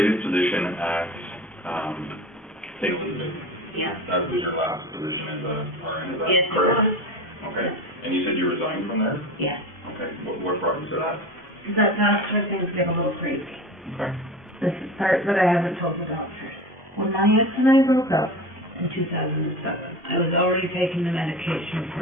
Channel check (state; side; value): normal; both; correlation 0.31